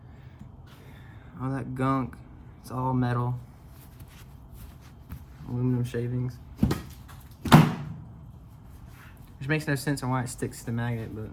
All that gunk. It's all metal. Aluminum shavings. Which makes no sense on why it sticks to the magnet, but...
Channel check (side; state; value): both; identical; correlation 1.00